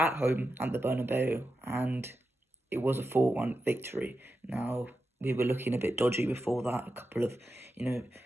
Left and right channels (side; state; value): both; normal; correlation 0.89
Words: home at the Bernabeu, and it was a 4-1 victory. Now, we were looking a bit dodgy before that. A couple of,